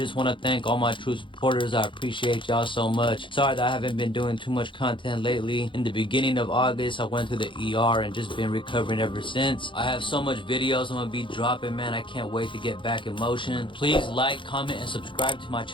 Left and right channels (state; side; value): late; right; 0.24 ms